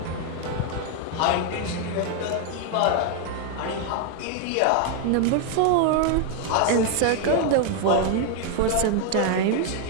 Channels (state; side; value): different; both; correlation 0.00